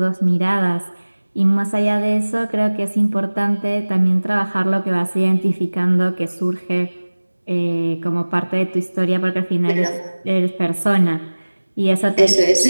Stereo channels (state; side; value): inverted; both; correlation -1.00